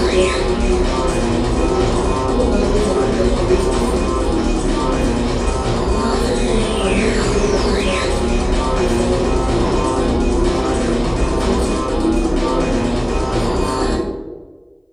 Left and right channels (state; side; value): identical; both; correlation 1.00